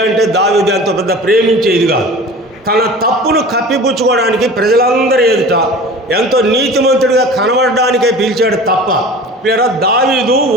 అంటే దావీదు ఎంతో పెద్ద ప్రేమించేది కాదు. తన తప్పును కప్పిపుచ్చుకోవడానికి ప్రజలందరూ ఎదుట ఎంతో నీతిమంతుడిగా కనబడడానికే పిలిచాడు తప్ప, లేదా దావీదు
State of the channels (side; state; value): both; normal; correlation 0.39